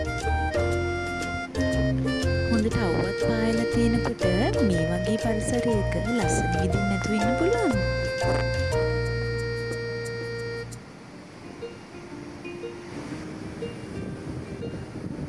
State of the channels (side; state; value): both; identical; correlation 1.00